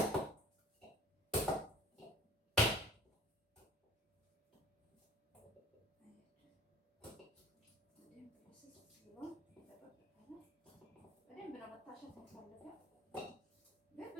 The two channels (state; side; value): normal; both; correlation 0.45